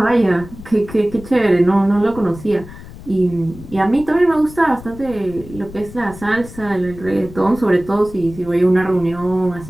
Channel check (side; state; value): left; noise; rumble, 16 dB below the sound